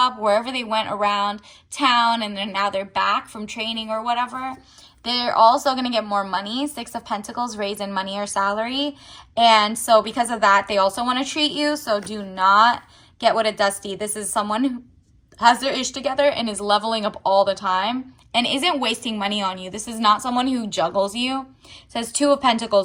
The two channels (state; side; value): identical; both; correlation 1.00